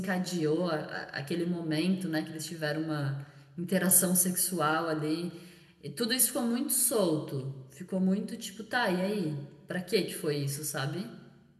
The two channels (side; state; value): both; identical; correlation 1.00